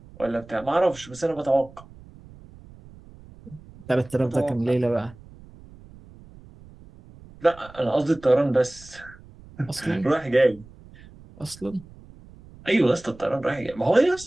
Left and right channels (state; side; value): noise; right; rumble, 21 dB below the sound